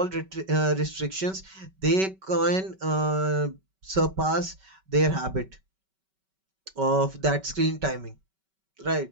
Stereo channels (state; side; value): late; left; 5.2 ms